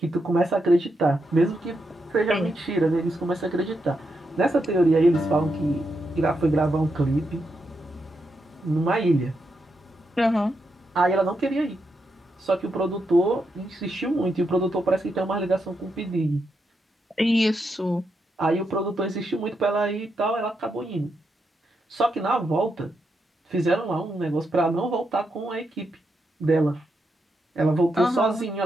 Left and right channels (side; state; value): both; normal; correlation 0.83